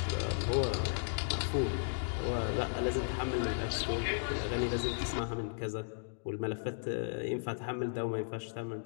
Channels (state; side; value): silent; right; digital silence